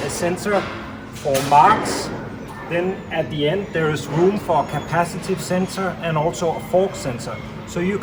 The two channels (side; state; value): both; identical; correlation 1.00